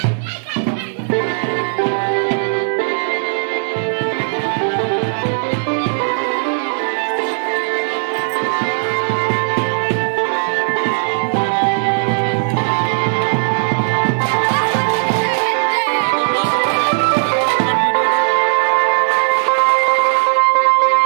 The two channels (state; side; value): silent; left; 62 dB below the other